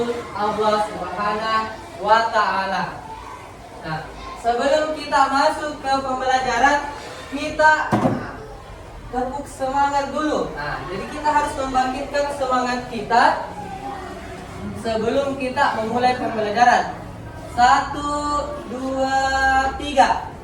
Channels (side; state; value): both; identical; correlation 1.00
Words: Allah Subhanahu wa taala. Nah, sebelum kita masuk ke pembelajaran, kita tepuk tepuk semangat dulu. Nah, jadi kita harus membangkitkan semangat kita sebelum kita memulai pembelajaran. 1, 2, 3.